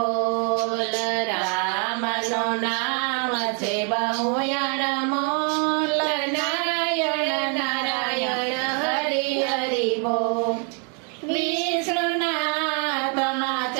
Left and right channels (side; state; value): left; quieter; 38.8 dB